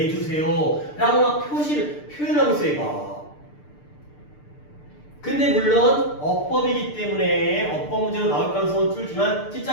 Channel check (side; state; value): right; late; 6.7 ms